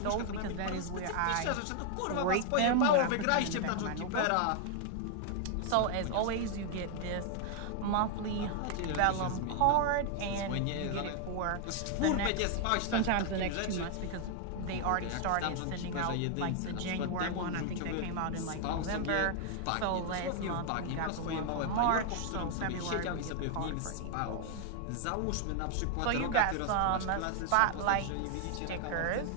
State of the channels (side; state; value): both; different; correlation 0.00